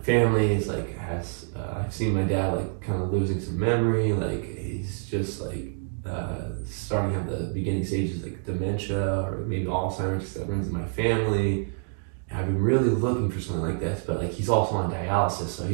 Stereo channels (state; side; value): silent; left; digital silence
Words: family is like has I've seen my dad like kind of losing some memory, like he's just like starting to have the beginning stages like dementia or maybe Alzheimer's that runs in my family. And I've been really looking for something like this, but like he's also on dialysis, so